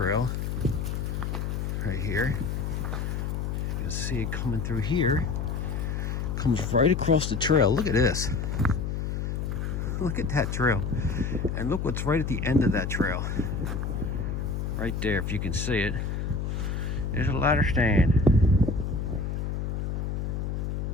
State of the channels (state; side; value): noise; left; hum, 2 dB below the sound